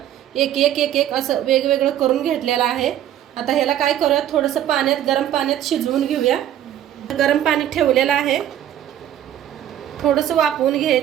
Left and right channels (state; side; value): quieter; left; 11.4 dB